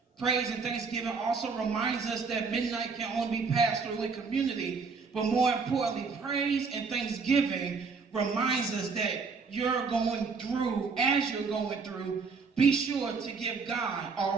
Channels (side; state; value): left; quieter; 4.9 dB